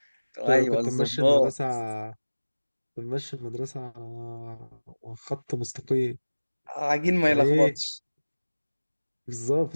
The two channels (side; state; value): both; inverted; correlation -1.00